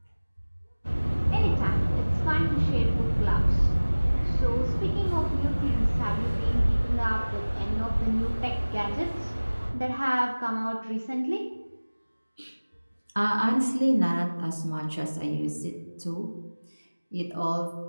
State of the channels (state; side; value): inverted; both; correlation -1.00